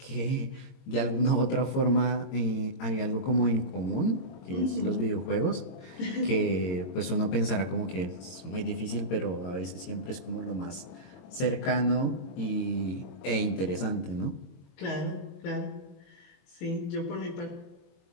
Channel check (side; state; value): right; late; 22 ms